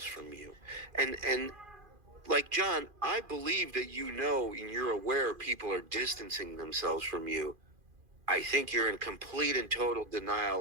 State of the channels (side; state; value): left; late; 2.4 ms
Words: from you, and like John, I believe that and you're aware people are distancing themselves from you. I think you're in complete and total